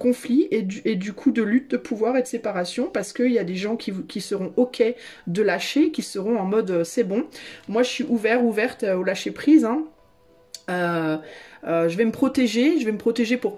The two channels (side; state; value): both; identical; correlation 1.00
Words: et du coup de lutte de pouvoir et de séparation, parce qu'il y a des gens qui seront ok de lâcher, qui seront en mode c'est bon, moi je suis ouverte au lâcher prise, hein. Je vais me protéger pour